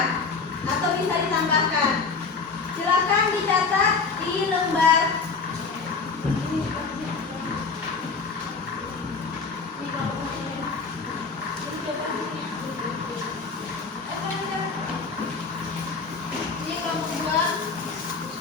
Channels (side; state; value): right; quieter; 4.7 dB